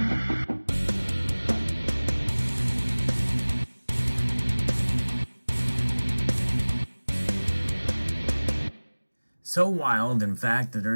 So wild, in fact, that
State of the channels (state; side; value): inverted; both; correlation -1.00